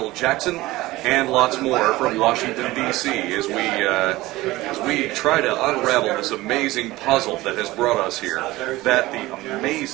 Jackson and lots more from Washington, D.C. as we try to unravel this amazing puzzle that has brought us here, that the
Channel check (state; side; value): quieter; left; 18.6 dB